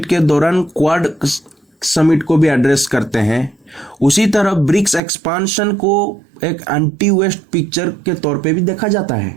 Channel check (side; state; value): left; drops out; at 5.0 s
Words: के दौरान क्वाड समिट को भी एड्रेस करते हैं, उसी तरह ब्रिक्स एक्सपांशन को एक एंटी वेस्ट पिक्चर के तौर पे भी देखा जाता